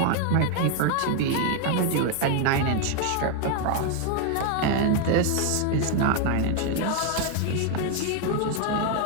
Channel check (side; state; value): both; different; correlation 0.00